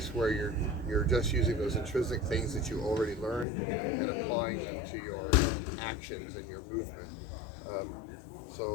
where you're just using those intrinsic things that you already learned and applying them to your actions and your movement.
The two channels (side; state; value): right; drops out; at 3.5 s